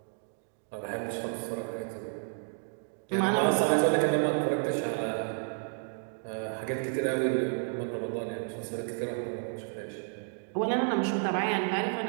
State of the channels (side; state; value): left; silent; 57 dB below the other